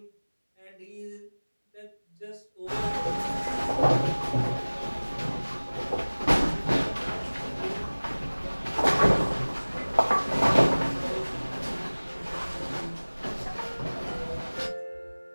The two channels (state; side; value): inverted; both; correlation -1.00